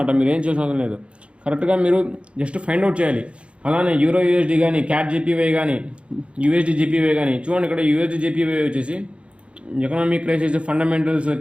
మీరు ఏం చేసిన అవసరం లేదు. కరెక్ట్గా మీరు జస్ట్ ఫైండ్ అవుట్ చేయాలి. అలానే యూరో యూఎస్డి కానీ, క్యాట్ జీపీవై కానీ, యూఎస్డి జీపీవై కానీ చూడండి. ఇక్కడ యూఎస్డి జీపీవై వచ్చేసి ఎకనామిక్ క్రైసిస్, ఫండమెంటల్స్,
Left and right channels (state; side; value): late; left; 0.059 ms